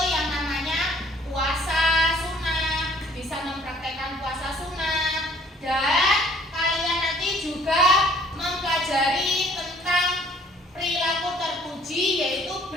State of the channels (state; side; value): normal; both; correlation 0.58